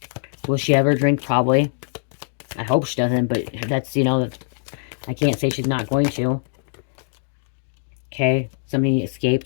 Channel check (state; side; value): silent; right; digital silence